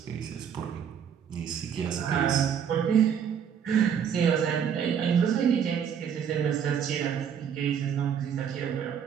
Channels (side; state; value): left; quieter; 8.0 dB